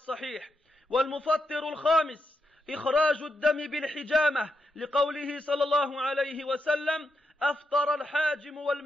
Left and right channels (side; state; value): both; normal; correlation 0.84